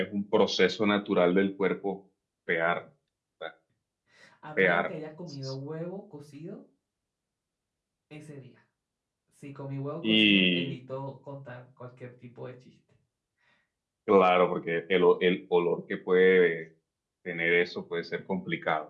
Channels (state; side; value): identical; both; correlation 1.00